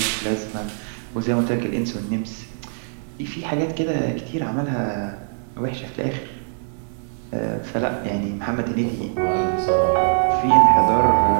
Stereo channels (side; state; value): left; silent; digital silence